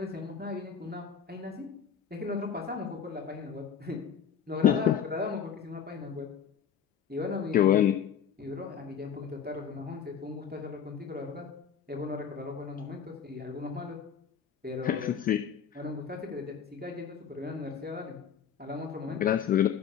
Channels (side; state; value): right; quieter; 7.9 dB